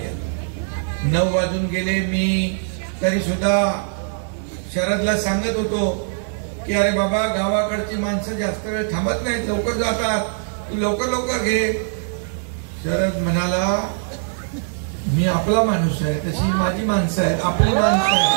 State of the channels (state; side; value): silent; left; digital silence